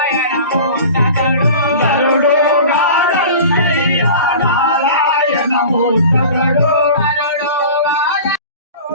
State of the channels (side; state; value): both; inverted; correlation -0.38